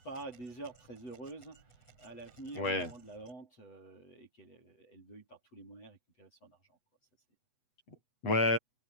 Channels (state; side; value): late; right; 8.1 ms